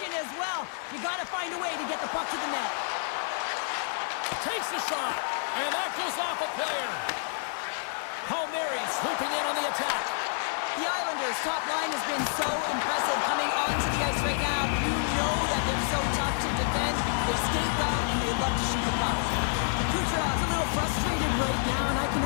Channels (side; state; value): right; silent; 56 dB below the other